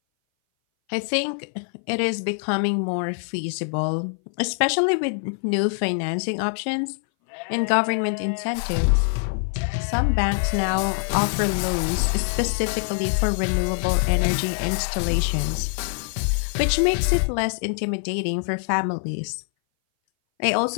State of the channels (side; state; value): right; silent; 59 dB below the other